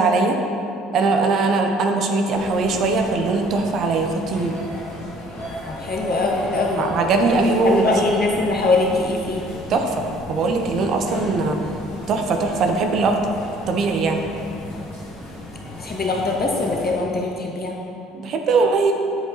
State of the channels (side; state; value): both; normal; correlation 0.57